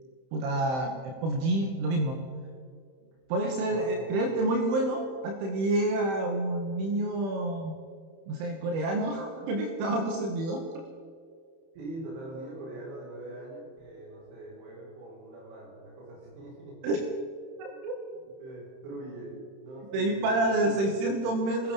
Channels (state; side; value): late; left; 31 ms